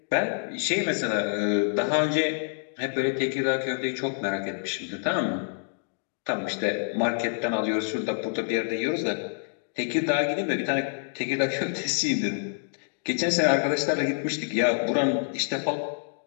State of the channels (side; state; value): right; silent; digital silence